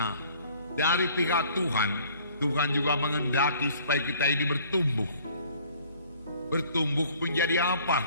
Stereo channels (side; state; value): both; inverted; correlation -0.55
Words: dari pihak Tuhan, Tuhan juga mengendaki supaya kita ini bertumbuh. Bertumbuh menjadi apa?